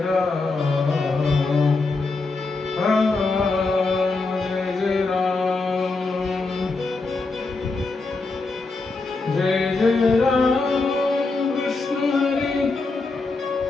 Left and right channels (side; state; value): right; quieter; 3.7 dB